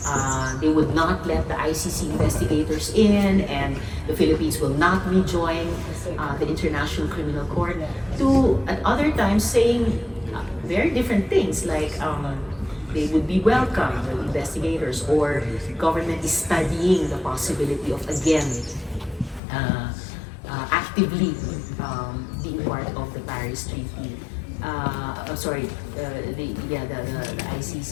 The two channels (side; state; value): right; drops out; at 19.4 s